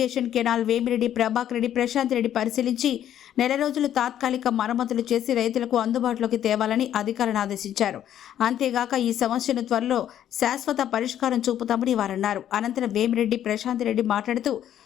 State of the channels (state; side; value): quieter; right; 10.8 dB